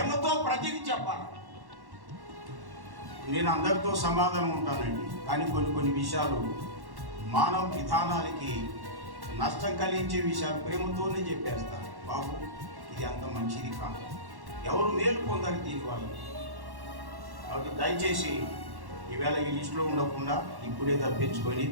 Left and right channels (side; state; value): left; late; 1.1 ms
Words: ప్రతిదీ చెప్పాలి. నేను అందరితో సమాధానం ఉంటానండి, కానీ కొన్ని విషయాలు మానవ విధానాలకి నష్టం కలిగించే విషయాలు ప్రేమతోనే చెప్పేస్తాను. బాబు ఇది అంత మంచిది కాదు, ఎవరు మేలు పొందాలి దీనివల్ల. కాబట్టి దయచేసి ఈవేళ ఈ లిస్టులో ఉండకుండా ఇప్పుడే తప్పించుకొని,